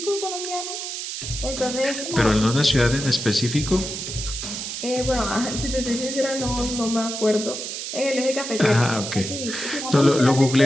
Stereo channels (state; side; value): noise; right; hiss, 6 dB below the sound